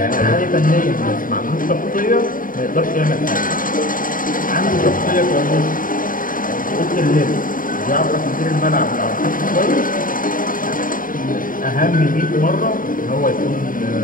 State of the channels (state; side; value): late; right; 0.40 ms